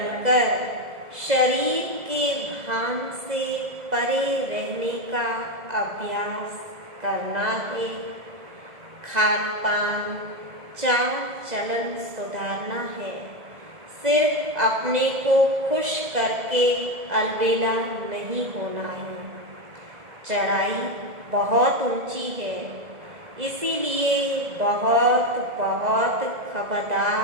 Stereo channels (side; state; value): left; late; 2.0 ms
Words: शरीर के भान से परे रहने का अभ्यास करना है। खान पान चाल चलन सुधारना है। सिर्फ अपने को खुश करके अलबेला नहीं होना है। चढ़ाई बहुत ऊंची है, इसीलिए बहुत बहुत